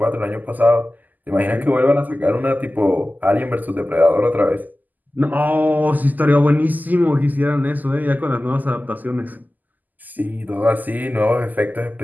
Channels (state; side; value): late; left; 0.083 ms